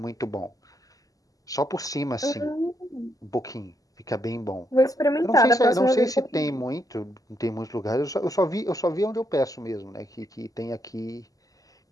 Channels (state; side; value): late; right; 0.17 ms